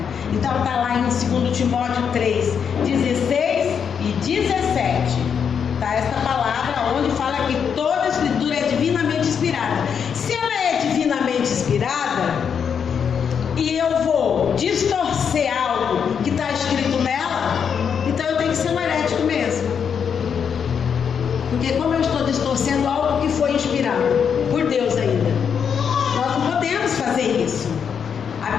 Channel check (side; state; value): right; quieter; 7.2 dB